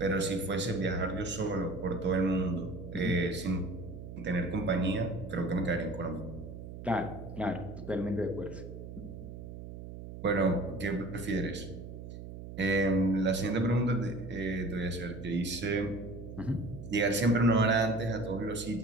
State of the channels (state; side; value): noise; right; hum, 11 dB below the sound